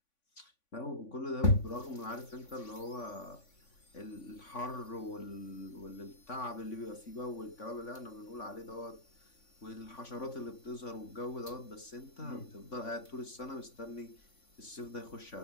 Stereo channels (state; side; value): late; right; 3.5 ms